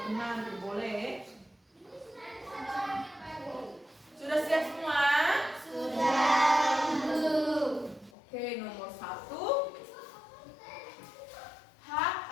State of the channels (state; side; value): drops out; right; at 8.1 s